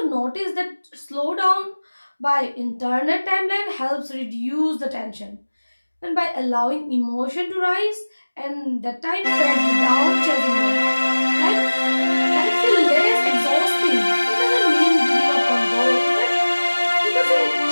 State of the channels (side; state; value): both; inverted; correlation -1.00